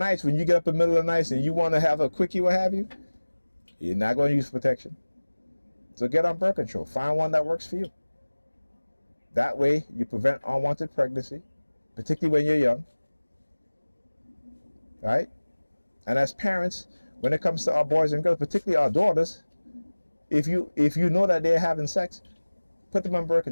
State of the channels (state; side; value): inverted; both; correlation -1.00